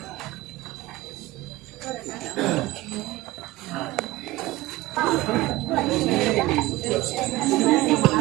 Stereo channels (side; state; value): left; quieter; 18.5 dB